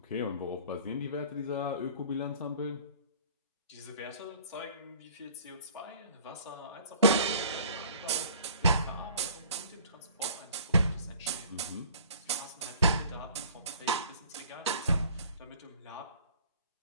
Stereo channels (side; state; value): both; inverted; correlation -0.50